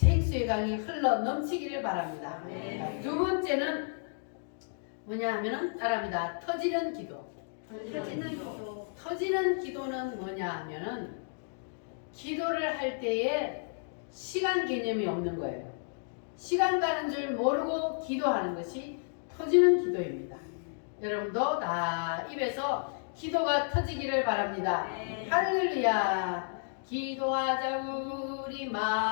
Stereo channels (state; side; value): silent; right; digital silence